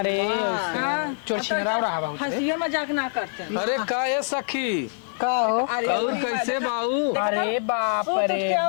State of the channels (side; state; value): right; silent; 62 dB below the other